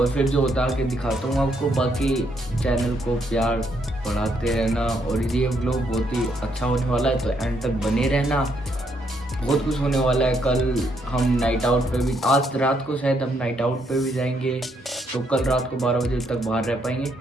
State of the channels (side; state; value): both; normal; correlation 0.74